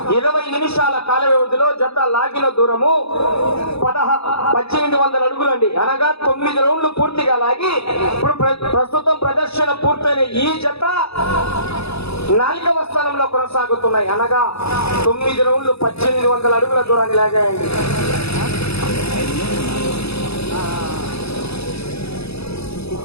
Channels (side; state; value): right; late; 0.79 ms